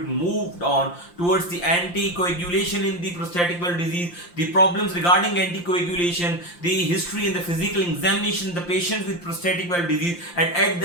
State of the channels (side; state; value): right; late; 5.7 ms